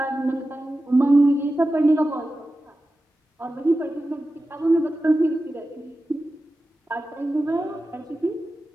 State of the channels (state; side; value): normal; both; correlation 0.93